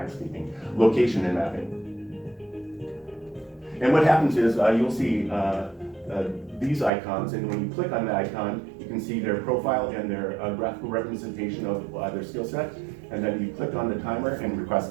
speaking, location and mapping. And what happens is you'll see these icons, and when you click on the icon, you can see their profile and their graphical representation of their skill set, and then you click on the timer and request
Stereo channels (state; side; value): drops out; left; at 6.9 s